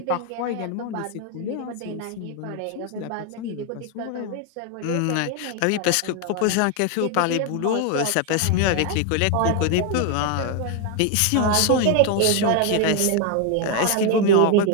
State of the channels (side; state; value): both; different; correlation 0.01